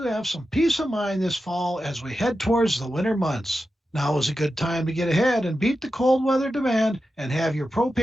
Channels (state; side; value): normal; both; correlation 0.91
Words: have some peace of mind this fall as we head towards the winter months. Now is a good time to get ahead and beat the cold weather demand and have your